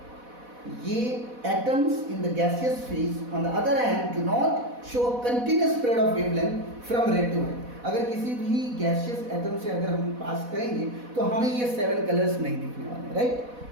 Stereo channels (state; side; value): late; left; 4.1 ms